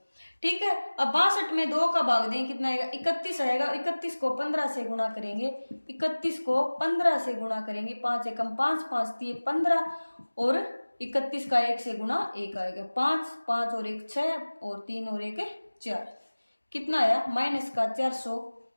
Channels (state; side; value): inverted; both; correlation -1.00